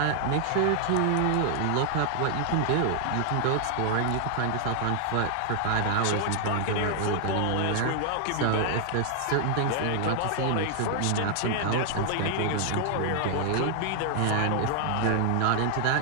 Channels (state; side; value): different; both; correlation 0.00